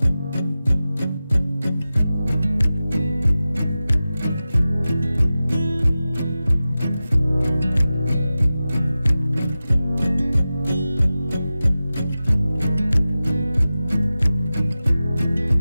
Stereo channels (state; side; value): inverted; both; correlation -0.95